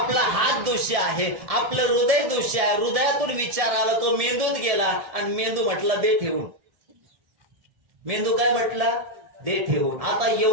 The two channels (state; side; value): late; left; 1.7 ms